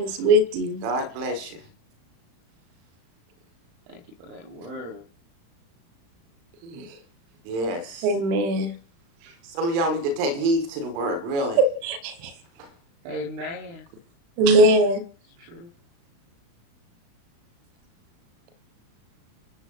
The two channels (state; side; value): late; left; 35 ms